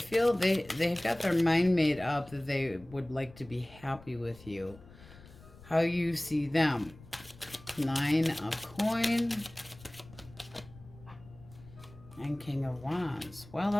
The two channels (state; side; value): noise; left; rumble, 21 dB below the sound